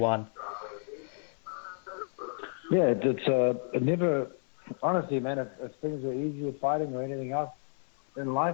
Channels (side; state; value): right; silent; 57 dB below the other